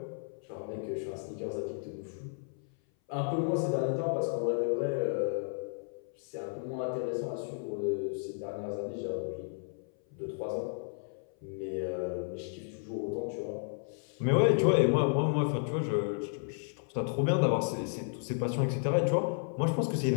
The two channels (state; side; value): silent; right; 56 dB below the other